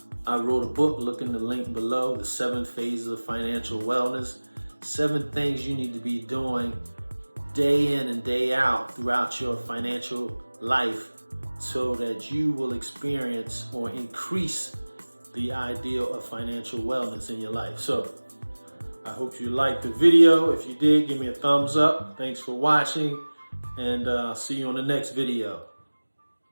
I wrote a book, look in the link below, The 7 Phases of Financial Wellness. 7 things you need to be doing day in and day out throughout your financial life so that you will experience or increase the ideal of financial wellness in your life. So I hope you liked the video. If you did, give me a thumbs up. Thanks for watching, and I'll see you on the next video.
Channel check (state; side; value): inverted; both; correlation -1.00